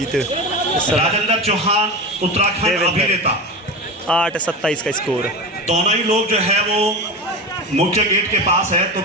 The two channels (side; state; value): both; normal; correlation 0.25